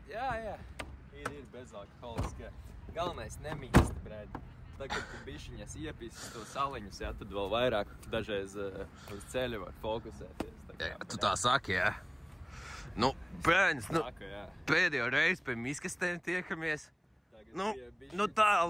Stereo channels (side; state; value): both; identical; correlation 1.00